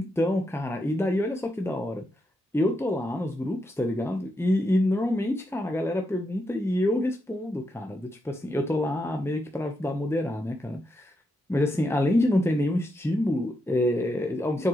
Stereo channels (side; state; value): both; normal; correlation 0.83